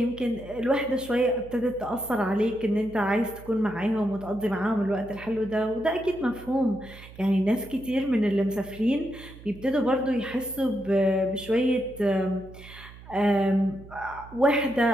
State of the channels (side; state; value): right; noise; hum, 18 dB below the sound